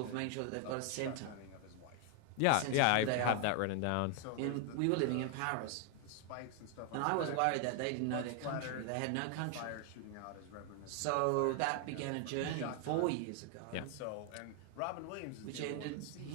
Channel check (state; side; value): different; both; correlation 0.00